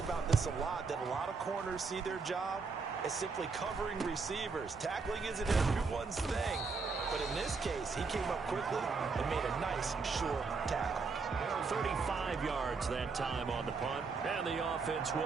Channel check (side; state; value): left; quieter; 4.6 dB